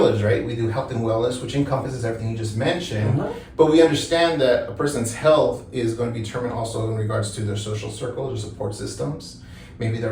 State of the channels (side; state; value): both; identical; correlation 1.00